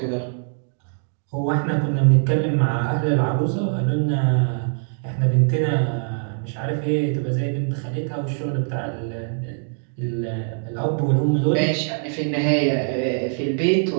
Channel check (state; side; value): silent; left; digital silence